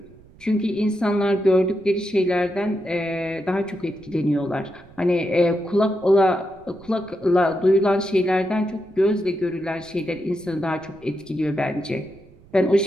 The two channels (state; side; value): noise; right; rumble, 25 dB below the sound